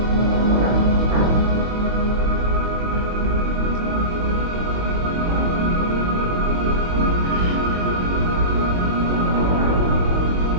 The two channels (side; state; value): left; late; 22 ms